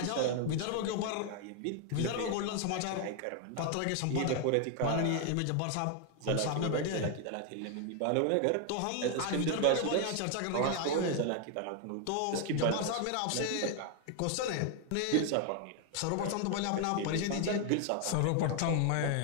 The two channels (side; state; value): both; different; correlation 0.00